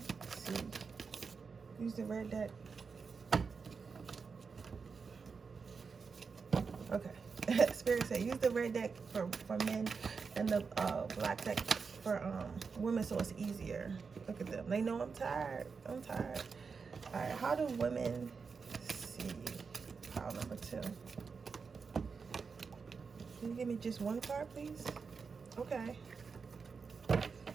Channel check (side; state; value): left; quieter; 5.2 dB